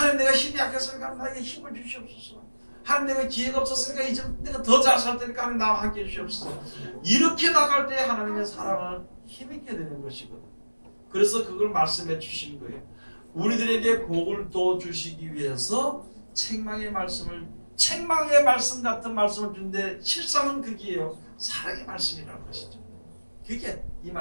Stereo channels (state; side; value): inverted; both; correlation -1.00